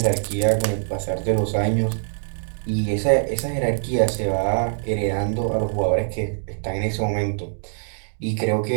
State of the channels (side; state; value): left; silent; digital silence